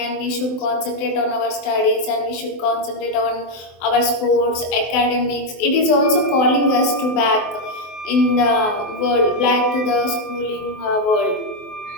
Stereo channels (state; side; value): late; right; 23 ms